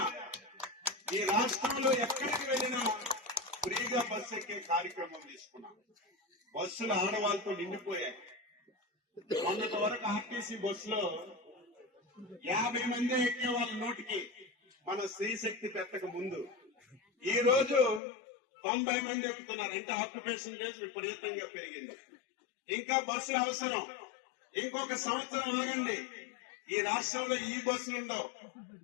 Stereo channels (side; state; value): right; drops out; at 18.0 s